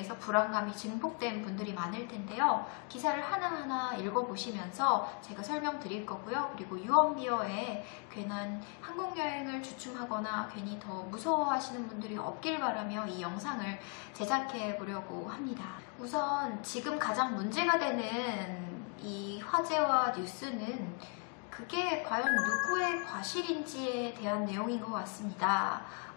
불안감이 증폭된 분들이 많을 텐데요. 기사를 하나하나 읽어보시면서 제가 설명드릴 거고요. 그리고 유언비어에 괜한 항공여행을 주춤하거나 괜히 더 무서워하시는 분들이 없길 바라며 이 영상을 제작해 보려고 합니다. 우선 지금 가장 문제가 되는 이 화제와 뉴스는 그게 과연 누구의 과실인지에 대한 내용인 것 같습니다.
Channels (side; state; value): right; quieter; 37.2 dB